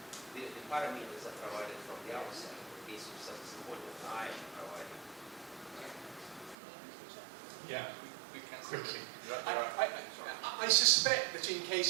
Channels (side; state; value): left; drops out; at 6.6 s